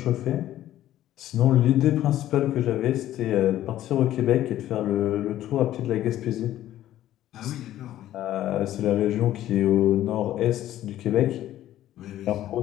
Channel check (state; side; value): quieter; right; 13.2 dB